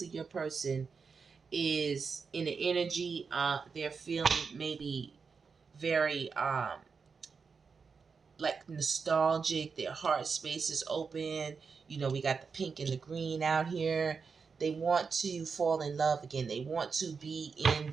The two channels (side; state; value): left; quieter; 5.4 dB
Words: your person is in the energy. They're feeling maybe very like nostalgic. Their heart space is open. You know, we got the pink and the green out here. They want to fall in love again. They want to be in